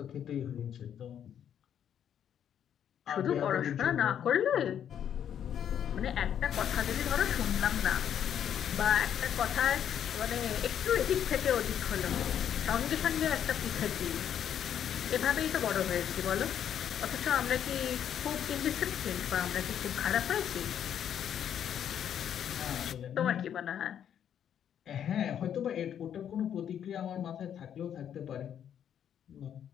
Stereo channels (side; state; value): right; quieter; 9.3 dB